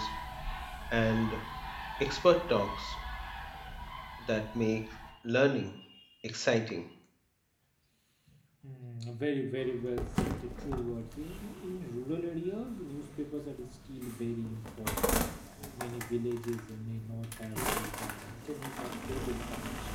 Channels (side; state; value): both; identical; correlation 1.00